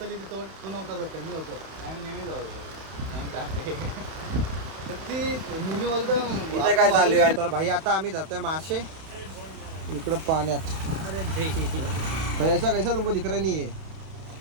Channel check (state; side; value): late; left; 31 ms